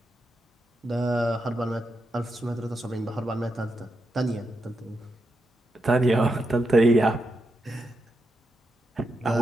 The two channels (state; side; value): normal; both; correlation 0.85